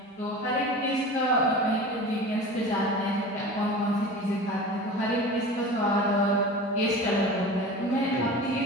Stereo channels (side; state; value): both; normal; correlation 0.35